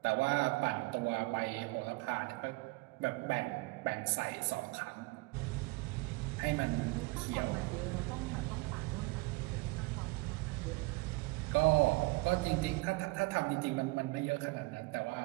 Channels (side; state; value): left; quieter; 24.2 dB